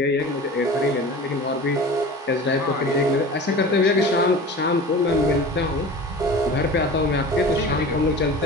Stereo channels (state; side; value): normal; both; correlation 0.37